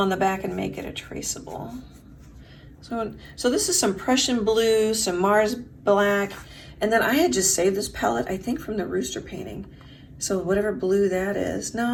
the back and make it a traceable. So this is some Prussian blue, some Mars black, and then I had just saved this palette, I think from the rooster painting. So whatever blue that is.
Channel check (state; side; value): identical; both; correlation 1.00